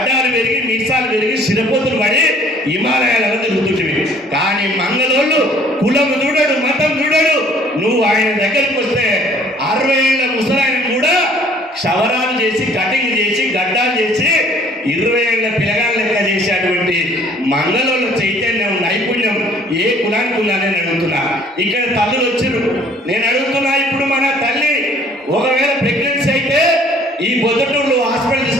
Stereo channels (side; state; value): both; normal; correlation 0.56